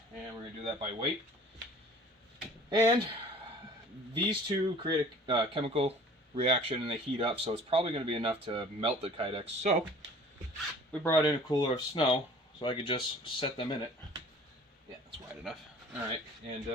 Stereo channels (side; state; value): both; normal; correlation 0.48